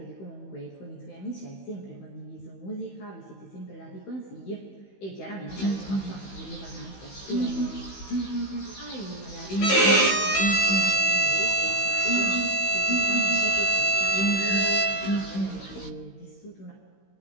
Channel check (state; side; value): late; right; 16 ms